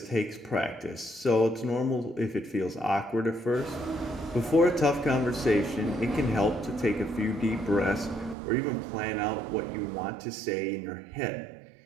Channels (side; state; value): left; drops out; at 8.3 s